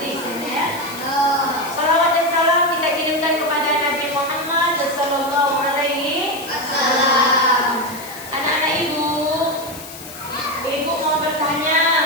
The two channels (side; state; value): left; noise; hiss, 14 dB below the sound